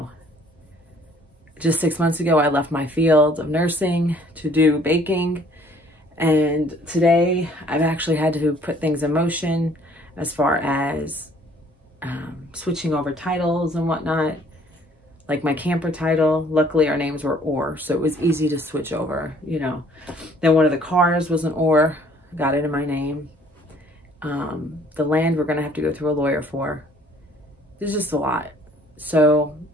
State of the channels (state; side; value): normal; both; correlation 0.58